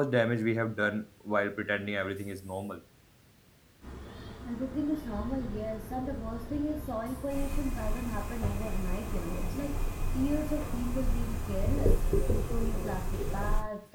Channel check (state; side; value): identical; both; correlation 1.00